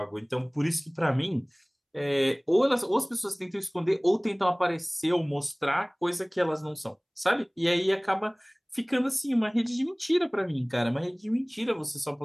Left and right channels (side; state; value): both; identical; correlation 1.00